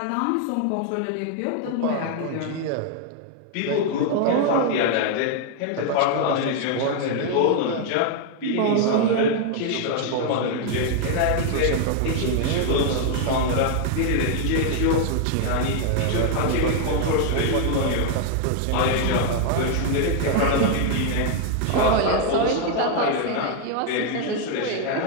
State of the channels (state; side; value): different; both; correlation 0.00